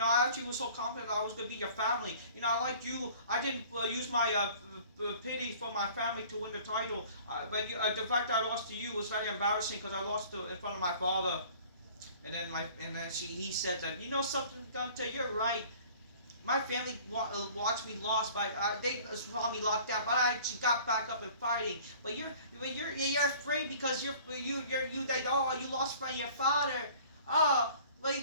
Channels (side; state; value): both; inverted; correlation -0.49